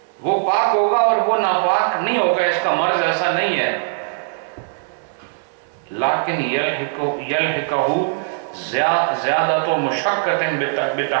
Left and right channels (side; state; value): left; silent; digital silence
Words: وہ پاک ہوگا اور وہ ناپاک نہیں ہوگا، اس کا مرض ایسا نہیں ہے۔ لیکن یلحقہ زیادۃ مشقۃ